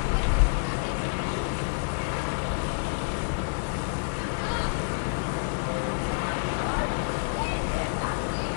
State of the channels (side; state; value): right; silent; 59 dB below the other